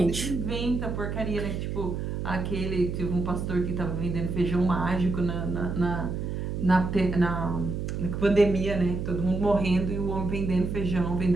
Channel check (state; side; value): noise; right; hum, 3 dB below the sound